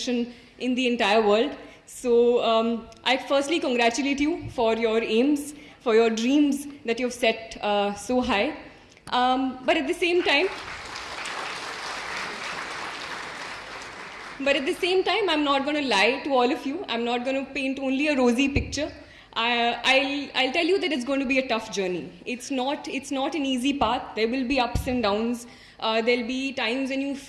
in the entire world. So I firstly congratulate you for your aims, for your dreams that you've set so high. But at the same time, I'm not going to lie to all of you. I'm not going to paint only a rosy picture. I'll tell you that it's going to be a tough journey. It's not an easy path. There will be ups and downs. There'll be times when you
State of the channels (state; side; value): identical; both; correlation 1.00